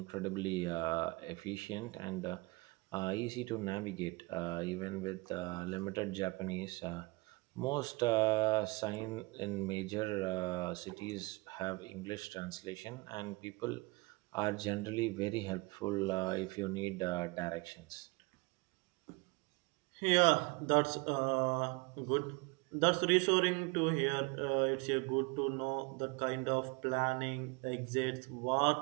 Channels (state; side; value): quieter; left; 25.4 dB